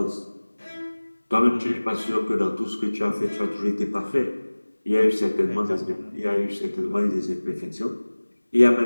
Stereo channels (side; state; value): both; inverted; correlation -1.00